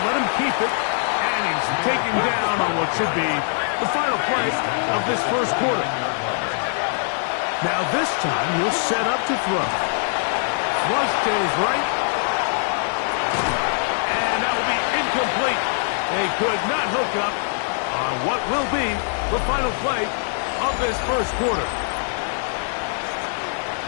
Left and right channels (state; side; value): silent; right; digital silence